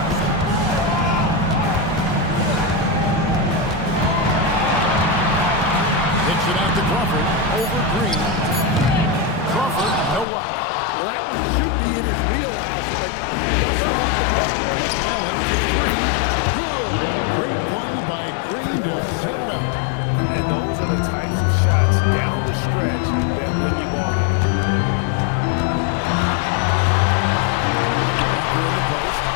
Hits it out to Crawford. Over Green. Crawford, no luck. Well, that one should be in his wheelhouse, but just off the mark. Allen for 3. Good. Great play by Green to set it up. And those are the types of shots down the stretch that win you ball games. Walker in the post.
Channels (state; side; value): drops out; right; at 10.2 s